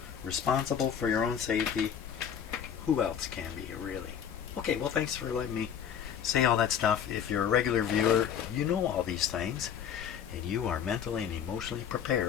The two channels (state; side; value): quieter; right; 8.5 dB